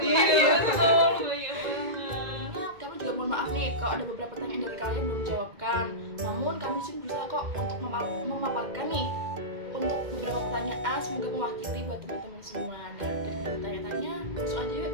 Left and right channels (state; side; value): late; left; 2.0 ms